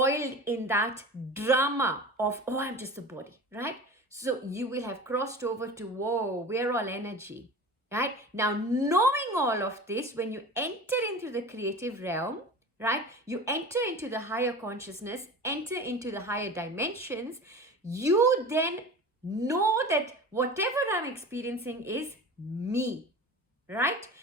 in that drama of, oh, I'm just a body, right? So you will have crossed over to, whoa, we're all energy, right? Now, knowing all of this, when you enter into the creative realm, right? You enter into the higher consciousness, enter into the higher dimensions, you then know that whatever I'm experiencing is me, right?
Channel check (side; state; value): both; normal; correlation 0.35